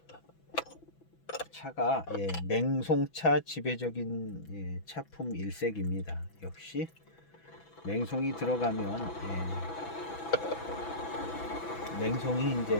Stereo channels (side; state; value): right; late; 6.0 ms